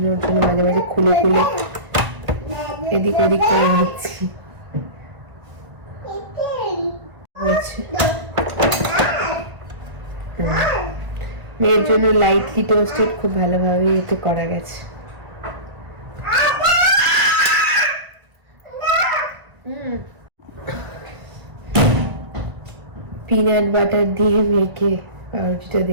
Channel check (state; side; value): late; left; 1.5 ms